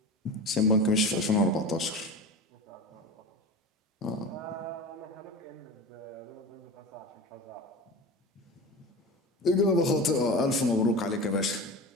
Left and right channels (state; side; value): normal; both; correlation 0.30